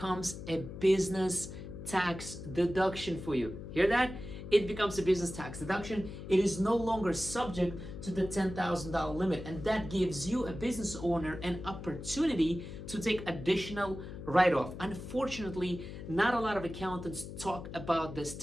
a business tax deduction for you. Hear that? It becomes a business tax deduction. It is no longer subject to the $10,000 limit, and that gives you, a business owner, an opportunity to take additional write-off. Unfortunately, not a lot of accountants talk about this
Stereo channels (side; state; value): left; noise; hum, 10 dB below the sound